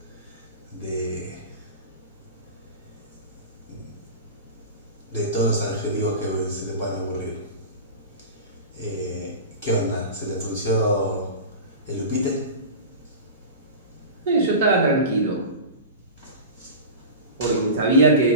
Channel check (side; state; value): both; inverted; correlation -0.31